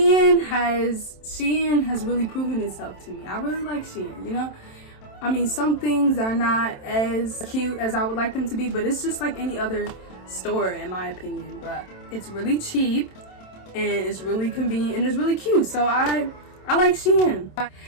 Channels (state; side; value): late; right; 27 ms